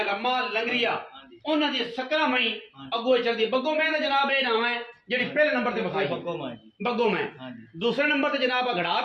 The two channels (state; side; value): identical; both; correlation 1.00